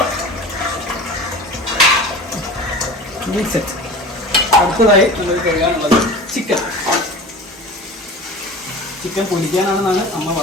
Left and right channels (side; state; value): both; normal; correlation 0.36